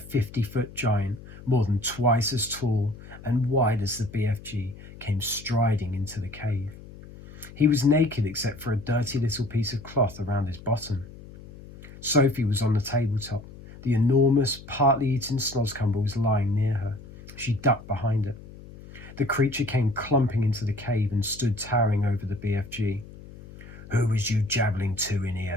giant, more than twice as tall and wide as the BFG, came striding into the cave. He was naked except for a dirty little piece of cloth around his bottom. Sophie was on the tabletop. The enormous, partly eaten snozcumber was lying near her. She ducked behind it. The creature came clumping into the cave and stood towering over the BFG. "Who was you jabbling to in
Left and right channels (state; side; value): noise; left; hum, 17 dB below the sound